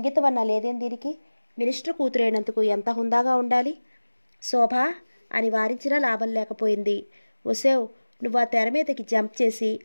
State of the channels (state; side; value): inverted; both; correlation -1.00